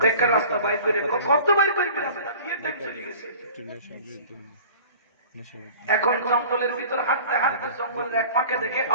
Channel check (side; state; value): both; inverted; correlation -0.44